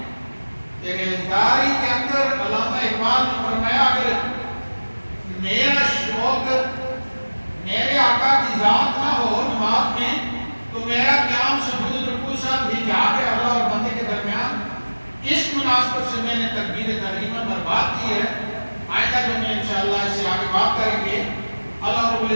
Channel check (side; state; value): both; inverted; correlation -1.00